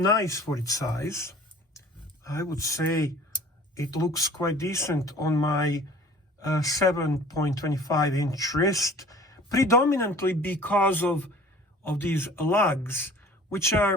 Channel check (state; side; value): normal; both; correlation 0.47